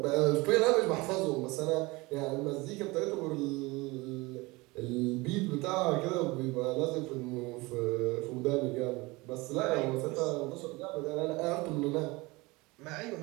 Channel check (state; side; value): quieter; left; 23.3 dB